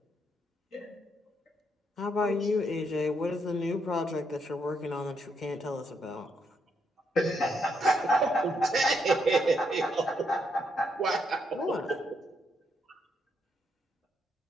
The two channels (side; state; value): both; normal; correlation 0.77